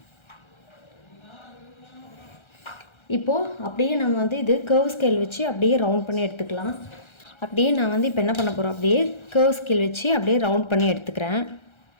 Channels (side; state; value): right; late; 1.3 ms